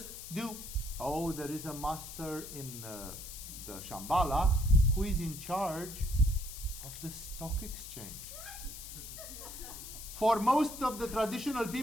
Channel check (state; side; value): noise; left; hiss, 11 dB below the sound